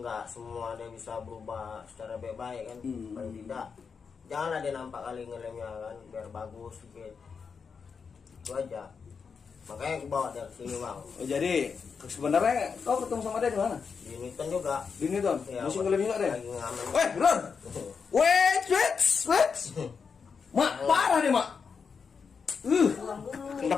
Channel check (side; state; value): right; quieter; 5.8 dB